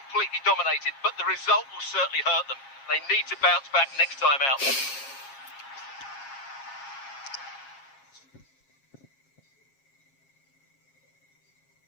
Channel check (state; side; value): late; right; 7.4 ms